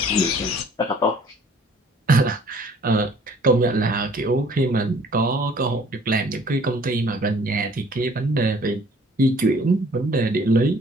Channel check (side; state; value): both; normal; correlation 0.55